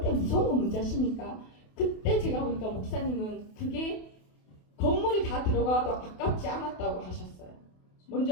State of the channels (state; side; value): late; right; 28 ms